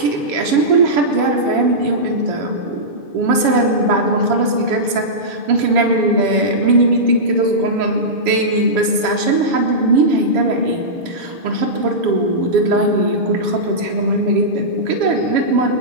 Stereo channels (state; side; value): late; left; 7.2 ms